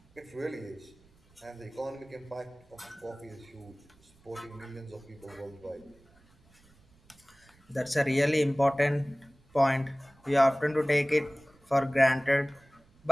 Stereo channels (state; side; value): noise; right; rumble, 30 dB below the sound